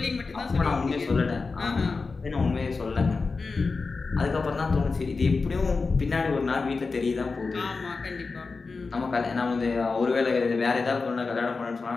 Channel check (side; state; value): right; quieter; 4.2 dB